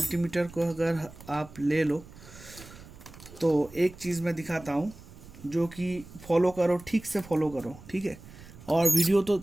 को अगर आप ले लो, तो एक चीज़ मैं दिखाता हूँ जो कि फॉलो करो, ठीक से फॉलो करो, ठीक है। और वीडियो तो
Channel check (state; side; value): noise; right; rumble, 18 dB below the sound